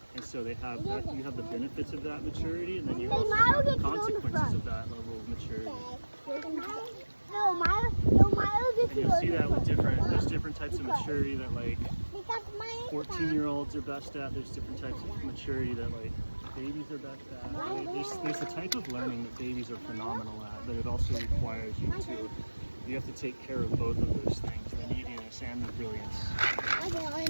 And so they have that, you have the benefits of that maturity, and then you also have the consequences of that level of maturity. And you'll see that with there's different types of maturity that like 14-year-olds are best at. There's different types of maturity that like babies are best at. There's a type of learning that babies are phenomenal at, but it also requires you have to take care of both of those things, the neediness and the brilliance.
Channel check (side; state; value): both; inverted; correlation -1.00